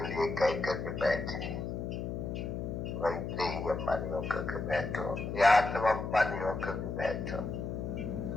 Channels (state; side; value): noise; left; hum, 4 dB below the sound